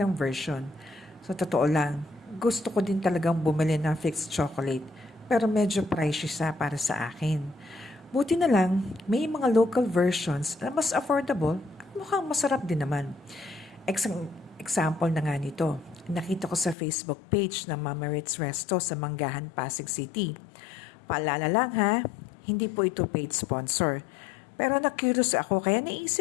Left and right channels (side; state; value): right; drops out; at 16.8 s